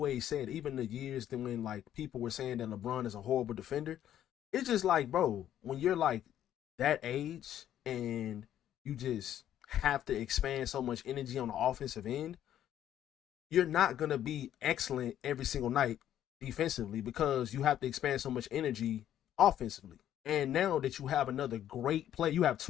said, even the years that when like people were saying that LeBron is a horrible defender, it's just like, bro, when you're like that age and you just have to expand so much energy on the offensive end, you're not gonna be excellent every single night defensively because you have to expand so much energy offensively. And now that you have another great play, you have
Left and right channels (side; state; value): right; quieter; 11.1 dB